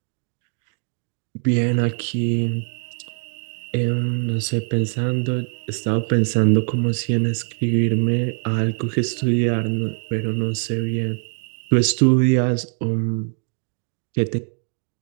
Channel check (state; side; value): silent; left; 57 dB below the other